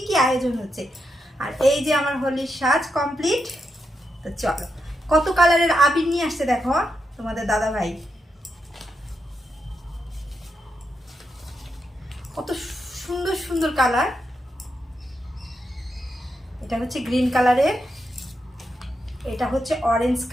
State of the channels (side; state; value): both; normal; correlation 0.84